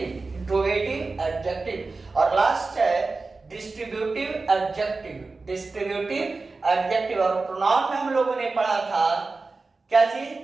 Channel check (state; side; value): quieter; left; 3.8 dB